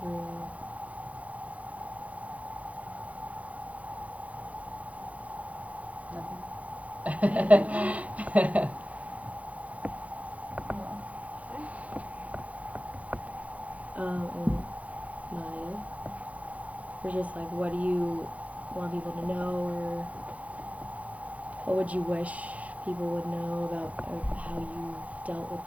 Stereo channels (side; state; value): left; late; 0.067 ms